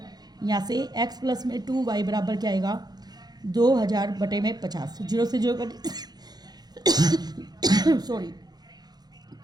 यहाँ से x प्लस में 2y बराबर क्या आएगा 2000 बटे में 50, 0 से 0 कट सॉरी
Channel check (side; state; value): left; late; 0.19 ms